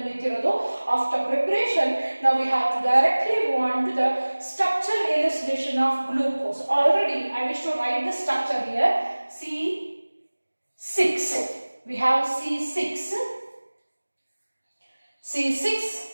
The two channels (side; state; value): both; inverted; correlation -1.00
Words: ನಿಂತಿರೋದು after preparation. Now we have to directly move on to the structure elucidation of glucose. Already I wish to write the structure here. C6. We have C6